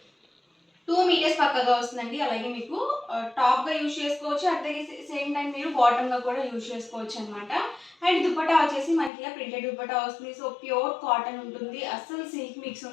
2 మీటర్స్ పక్కగా వస్తుందండి. అలాగే మీకు టాప్గా యూజ్ చేసుకోవచ్చు, అట్ ద సేమ్ టైం మీరు బాటమ్గా కూడా యూజ్ చేసుకోవచ్చు అనమాట. అండ్ దుపట్టా వచ్చేసి మనకి ఇలా ప్రింటెడ్ దుపట్టా వస్తుంది. సో ప్యూర్ కాటన్ ఉంటుంది, అస్సలు సిల్క్ మిక్స్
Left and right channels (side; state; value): right; drops out; at 9.1 s